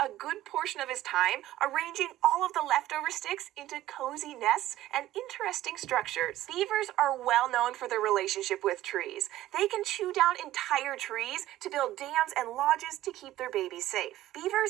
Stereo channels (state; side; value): quieter; left; 14.6 dB